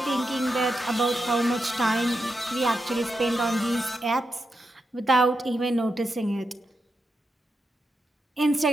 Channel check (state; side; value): normal; both; correlation 0.87